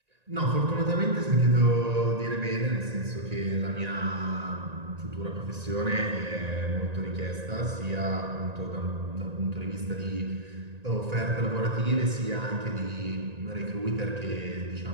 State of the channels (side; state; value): left; late; 1.9 ms